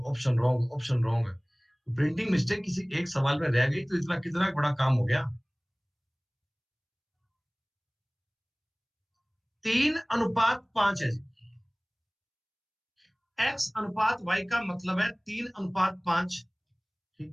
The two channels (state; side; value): identical; both; correlation 1.00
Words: option wrong, option wrong. Printing mistake किसी एक सवाल में रह गई तो इतना कितना बड़ा काम हो गया। 3/5 है जी। x/y का मतलब है 3/5।